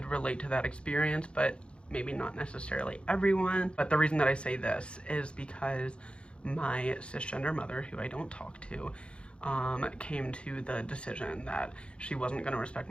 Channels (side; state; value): right; late; 0.057 ms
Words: relate to that experience, but maybe not necessarily everyone. But the reason that I say this is because my cisgender mother, who I don't talk to, came to the decision that she wasn't going to respect